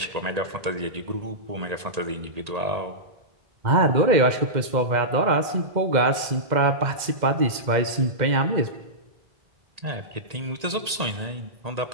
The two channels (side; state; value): left; late; 2.0 ms